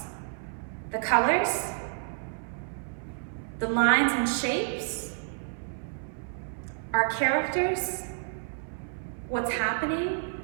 The colors, the lines and shapes, our characters, what's happening,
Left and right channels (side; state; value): left; silent; 58 dB below the other